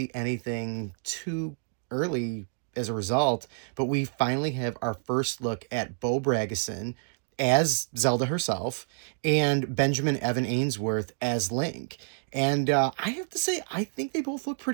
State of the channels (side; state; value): left; silent; digital silence